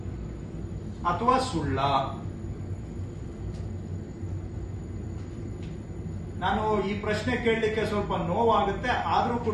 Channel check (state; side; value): identical; both; correlation 1.00